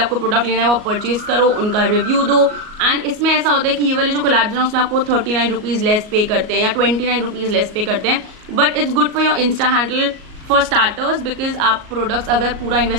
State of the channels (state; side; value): late; left; 38 ms